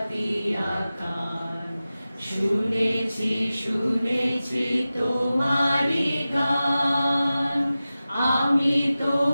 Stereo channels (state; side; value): inverted; both; correlation -0.95